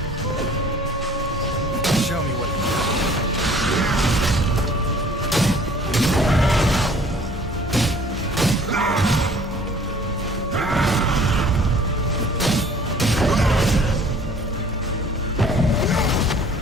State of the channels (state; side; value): normal; both; correlation 0.52